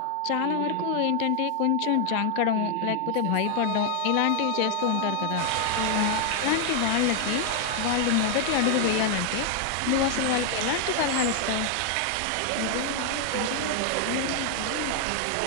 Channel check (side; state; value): both; different; correlation 0.00